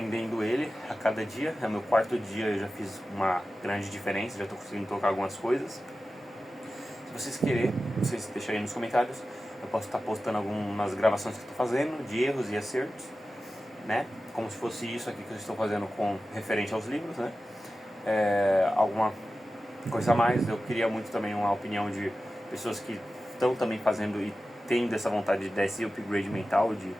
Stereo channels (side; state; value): both; normal; correlation 0.94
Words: ele a cada dia. É meu 4º dia, eu já fiz uma grande diferença, já estou conseguindo tocar algumas coisas. Se vocês querem, vocês deixarem aí nos comentários. Eu posso estar postando algumas gravações que eu estou fazendo, de erros e acertos, né? Como se fosse isso aqui que eu estou fazendo referente aos livros, né? Alguma coisa a mais. Eu queria muito também uma opinião de pessoas que estão também fazendo e tendo essa vontade de dar esse upgrade mental,